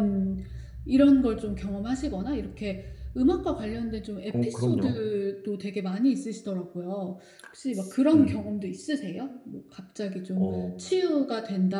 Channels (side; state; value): both; identical; correlation 1.00